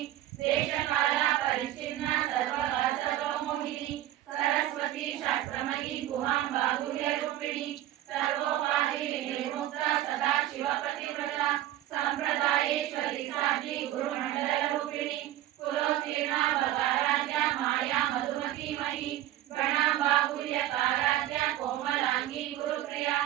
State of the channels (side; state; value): left; quieter; 13.7 dB